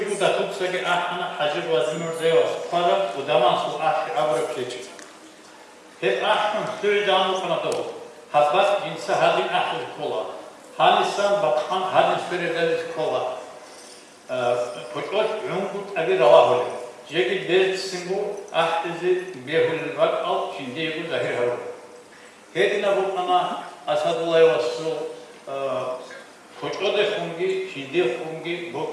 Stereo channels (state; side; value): identical; both; correlation 1.00